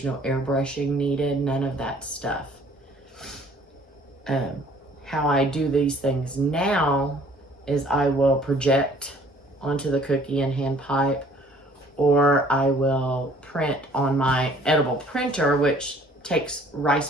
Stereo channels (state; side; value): normal; both; correlation 0.56